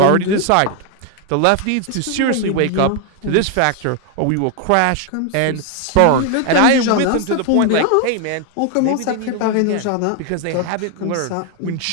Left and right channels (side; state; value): both; different; correlation 0.01